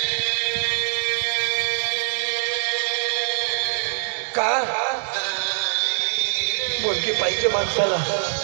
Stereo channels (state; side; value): silent; left; digital silence